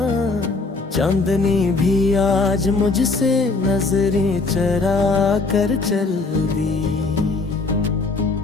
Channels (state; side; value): quieter; right; 3.7 dB